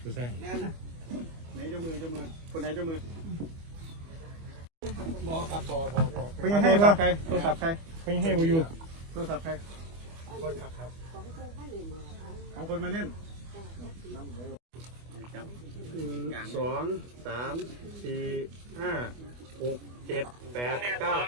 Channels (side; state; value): left; late; 25 ms